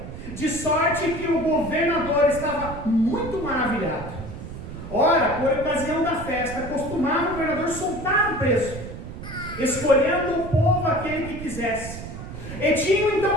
De sorte que o governador estava muito maravilhado. Ora, por ocasião da festa, costumava o governador soltar o preso, escolhendo o povo aquele que quisesse. E tinham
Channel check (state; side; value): noise; right; rumble, 10 dB below the sound